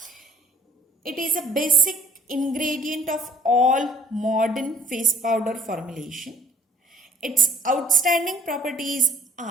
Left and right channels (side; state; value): both; normal; correlation 0.57